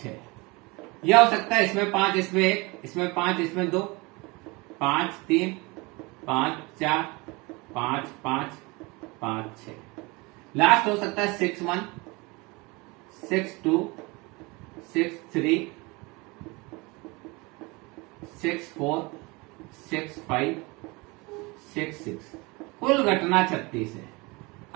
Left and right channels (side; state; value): left; quieter; 25.6 dB